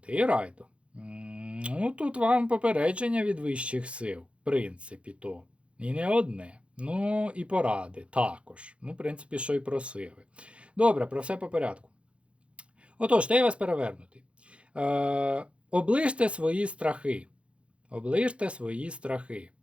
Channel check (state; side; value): late; left; 0.060 ms